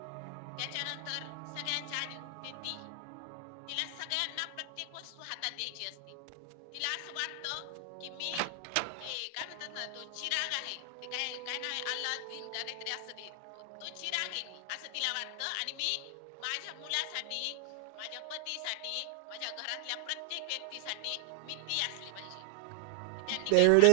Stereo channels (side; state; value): both; different; correlation 0.00